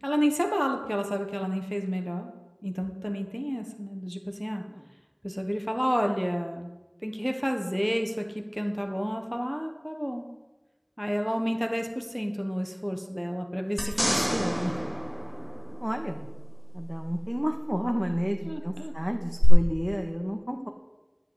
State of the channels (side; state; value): both; identical; correlation 1.00